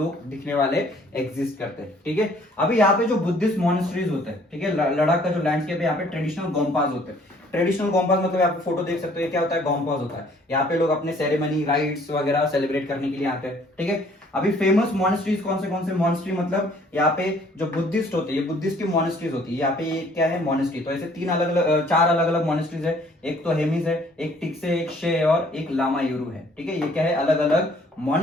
दिखने वाले एग्जिस्ट करते हैं, ठीक है। अभी यहाँ पे जो बुद्धिस्ट मॉनेस्ट्रीज होते हैं, ठीक है, लद्दाख का जो लैंडस्केप है यहाँ पे ट्रेडिशनल गोम्पास होते हैं। ट्रेडिशनल गोम्पास मतलब आप फोटो देख सकते हो, ये क्या होता है? गोम्पास होता है। यहाँ पे लोग अपने सेरेमनी, राइट्स वगैरह सेलिब्रेट करने के लिए आते हैं, ठीक है। अभी फेमस मॉनेस्ट्रीज कौन से मॉनेस्ट्री? मतलब यहाँ पे जो बुद्धिस्ट होते हैं, ये बुद्धिस्ट की मॉनेस्ट्रीज होती है। यहाँ पे ये क्या है? मॉनेस्ट्री। तो ऐसे चार अलग अलग मॉनेस्ट्रीज है। एक तो हेमिस है, एक टिक्से, एक शे और एक लामा यूरू है, ठीक है। ये क्या है? अलग अलग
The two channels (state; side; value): normal; both; correlation 0.59